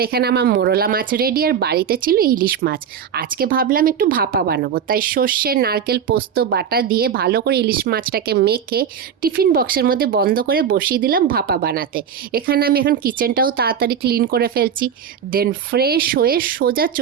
এখানে আমার মোরলা মাছ রেডি, আর বাড়িতে ছিল ইলিশ মাছ। আজকে ভাবলাম একটু ভাপা বানাবো, তাই সর্ষে নারকেল পোস্ত বাটা দিয়ে ভালো করে ইলিশ মাছটাকে মেখে টিফিন বক্সের মধ্যে বন্ধ করে বসিয়ে দিলাম ভাপা বানাতে। এখানে আমি এখন কিচেনটাও তাড়াতাড়ি ক্লিন করে ফেলছি। দেন ফ্রেশ হয়ে সোজা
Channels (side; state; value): left; quieter; 7.9 dB